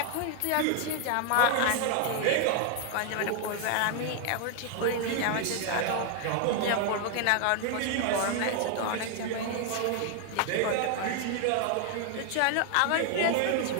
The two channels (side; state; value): both; different; correlation 0.00